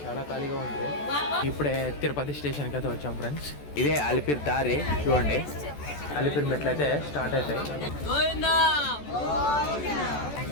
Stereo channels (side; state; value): right; late; 14 ms